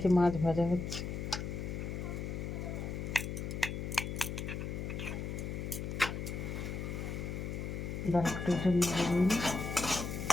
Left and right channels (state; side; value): noise; left; hum, 4 dB below the sound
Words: মাছ ভাজা হচ্ছে। দাঁড়াটার জন্য